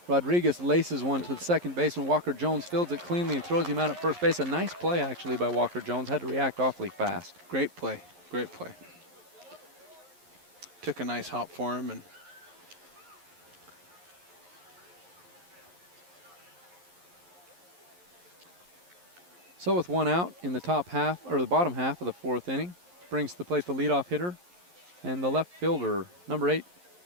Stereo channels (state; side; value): late; left; 11 ms